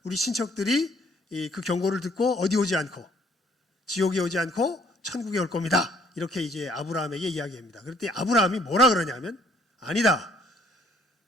우리 친척들이 그 경고를 듣고 어디 오지 않고 지옥에 오지 않고 천국에 올 겁니다. 이렇게 이제 아브라함에게 이야기합니다. 그럴 때 아브라함이 뭐라 그러냐면, 아니다.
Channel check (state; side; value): normal; both; correlation 0.62